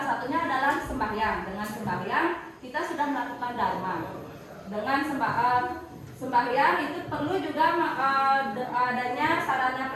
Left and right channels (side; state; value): both; identical; correlation 1.00